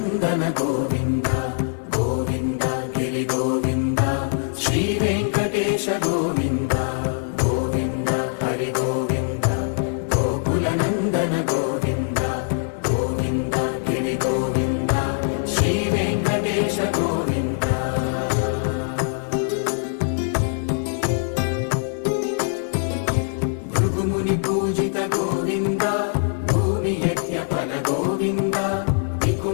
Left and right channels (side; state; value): right; silent; digital silence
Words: గోవింద గోవింద గిరి గోవింద శ్రీ వెంకటేశ గోవింద గోవింద హరి గోవింద గోకుల నందన గోవింద గోవింద గిరి గోవింద శ్రీ వెంకటేశ గోవింద భృగుముని పూజిత గోవింద భూమి యజ్ఞ ఫల గోవింద